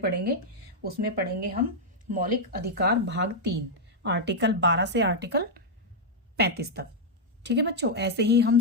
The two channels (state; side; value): normal; both; correlation -0.04